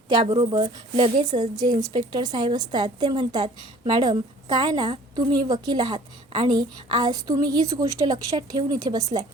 त्याबरोबर लगेचच जे इन्स्पेक्टर साहेब असतात ते म्हणतात, मॅडम काय ना तुम्ही वकील आहात आणि आज तुम्ही हीच गोष्ट लक्षात ठेवून इथे बसलाय.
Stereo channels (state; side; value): normal; both; correlation 0.51